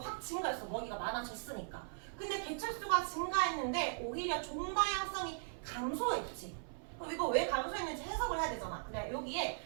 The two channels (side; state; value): left; silent; 52 dB below the other